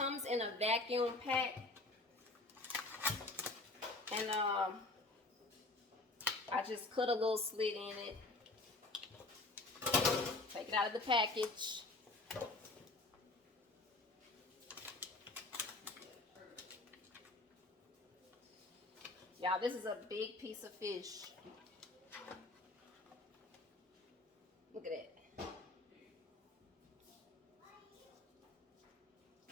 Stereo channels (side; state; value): right; quieter; 3.1 dB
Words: in a vacuum pack. And I just cut a little slit in it. Take it out of the package. Y'all, this is a big piece of fish. Look at that.